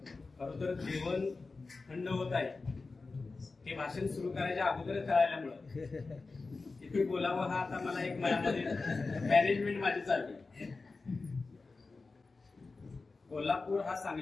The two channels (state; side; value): quieter; right; 3.9 dB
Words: खरं तर जेवण थंड होत आहे हे भाषण सुरू करायच्या अगोदरच कळाल्यामुळं किती बोलावं हा आता मला एक मनामध्ये मॅनेजमेंट माझी चालली. कोल्हापूर हा